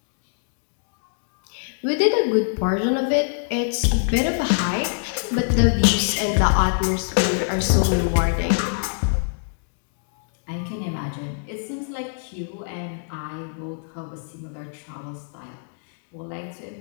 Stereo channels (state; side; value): silent; right; digital silence